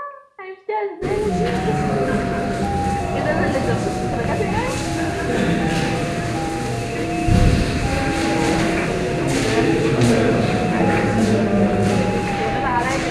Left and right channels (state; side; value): identical; both; correlation 1.00